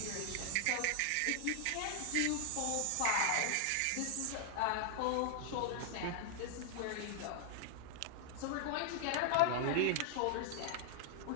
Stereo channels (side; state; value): both; different; correlation 0.00